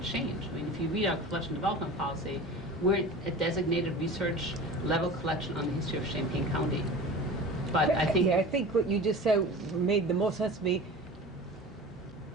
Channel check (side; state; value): both; normal; correlation 0.36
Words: change. I mean, if you read our collection development policy, we're a designated research level collection on the history of Champaign County. But I think... Yeah, I think what you just said made the most sense to me.